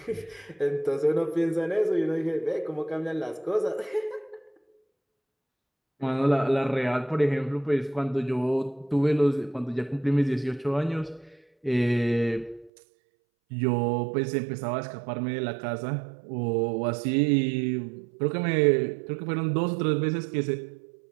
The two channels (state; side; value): drops out; left; at 12.7 s